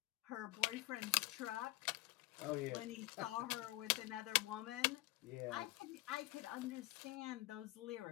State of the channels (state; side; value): quieter; right; 19.7 dB